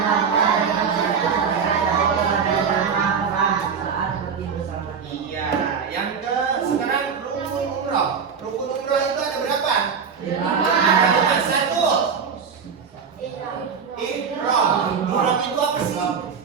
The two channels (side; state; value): left; quieter; 6.3 dB